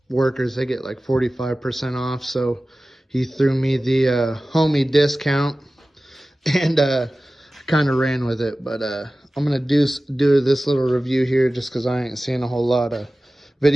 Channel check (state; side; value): normal; both; correlation 0.96